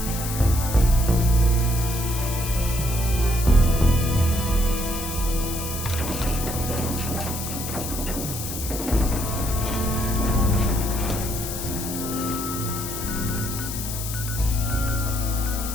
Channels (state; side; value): noise; left; hiss, 7 dB below the sound